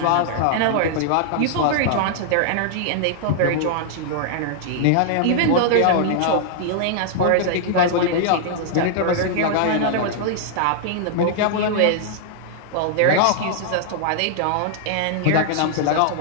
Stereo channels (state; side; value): different; both; correlation -0.01